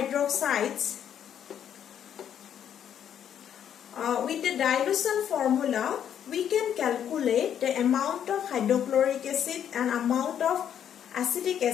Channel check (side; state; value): right; quieter; 9.3 dB